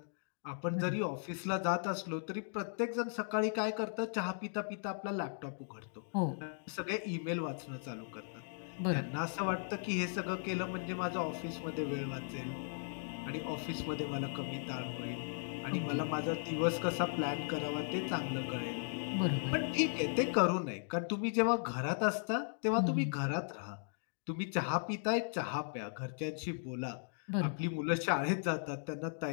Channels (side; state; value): right; silent; digital silence